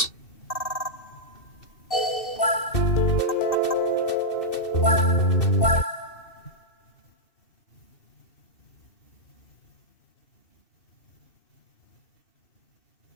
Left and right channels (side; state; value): right; late; 2.7 ms